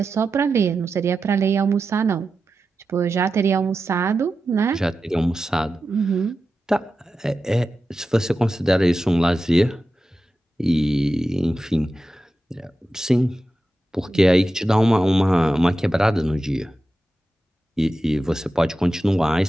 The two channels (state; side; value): normal; both; correlation 0.92